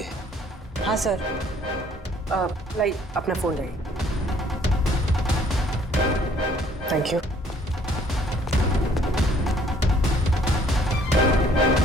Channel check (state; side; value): normal; both; correlation 0.60